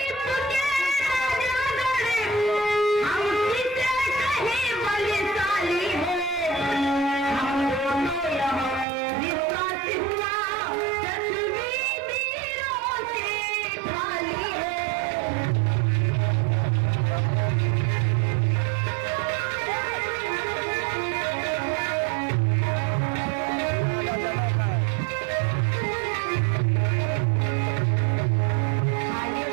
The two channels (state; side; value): drops out; left; at 8.8 s